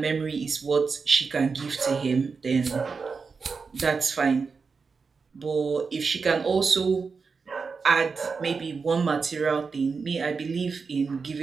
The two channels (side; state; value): left; quieter; 5.0 dB